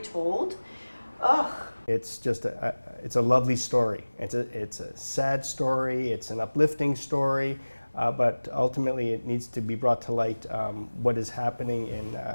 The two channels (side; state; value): both; inverted; correlation -1.00